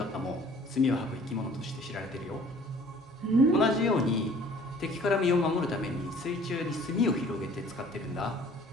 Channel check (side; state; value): both; normal; correlation 0.52